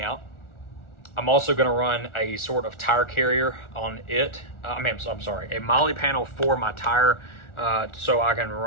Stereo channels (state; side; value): late; right; 1.4 ms